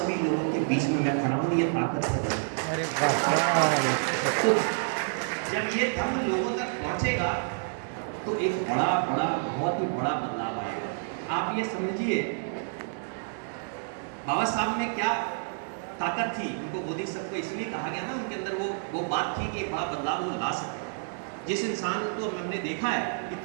लोगों के बीच में मैं खड़ा हूं, ये ताकत है। अरे वाह! तो जब ये धर्म लोगों तक पहुंचेगा तो एक बहुत ही बड़ा बदलाव आएगा। आप ये समझिए, बाबा साहब में क्या ताकत थी, उनको बोधिसत्व इसलिए कहा गया ना, उनके अंदर वो बात थी कि बड़ा बदलाव वो ला सकते। जिस इंसान को हमने देखा है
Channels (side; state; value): left; silent; digital silence